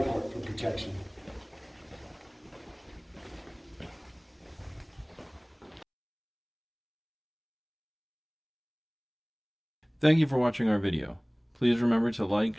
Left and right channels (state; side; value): identical; both; correlation 1.00